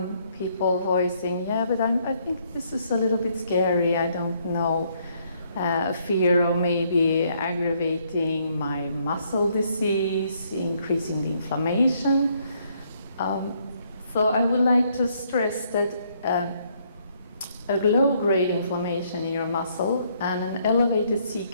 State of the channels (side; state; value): both; inverted; correlation -0.70